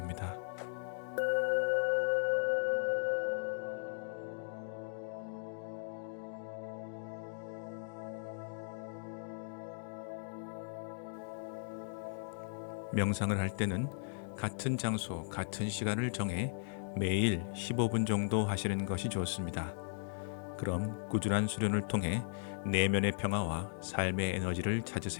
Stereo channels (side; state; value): right; silent; digital silence